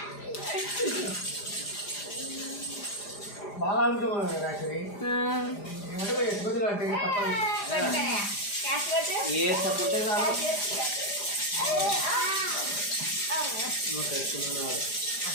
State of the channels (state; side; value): late; right; 4.9 ms